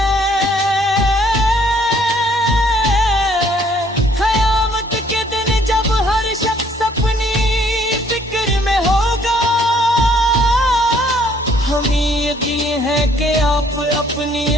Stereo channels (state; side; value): normal; both; correlation 0.62